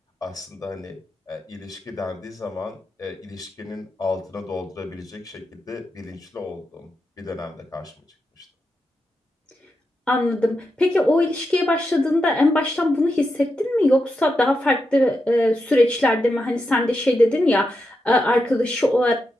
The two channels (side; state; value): both; normal; correlation 0.86